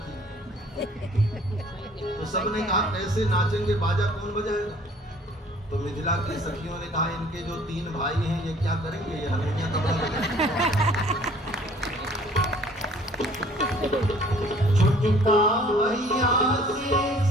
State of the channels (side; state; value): both; normal; correlation 0.55